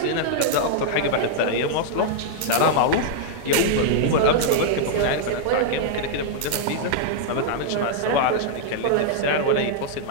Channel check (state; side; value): different; both; correlation -0.01